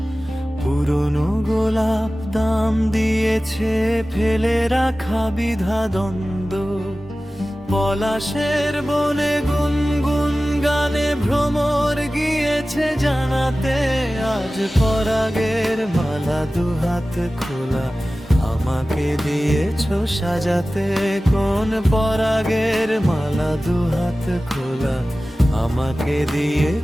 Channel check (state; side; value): normal; both; correlation 0.96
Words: পুরনো গোলাপ দাম দিয়েছে ফেলে রাখা বিধা দ্বন্দ্ব। পলাশের বনে গুনগুন গানে ভ্রমর গিয়েছে জানাতে, আজ পরাগের মালা দুহাত খোলা আমাকে দিয়েছো সাজাতে। কোন পরাগের মালা দুহাত খোলা আমাকে